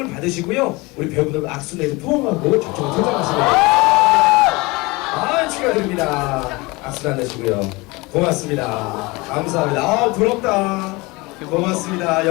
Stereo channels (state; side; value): quieter; right; 24.0 dB